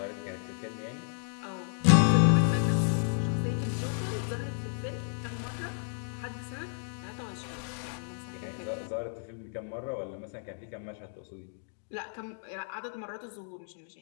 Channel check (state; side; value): silent; right; digital silence